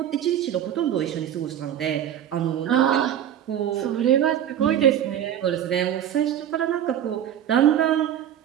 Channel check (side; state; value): left; quieter; 10.4 dB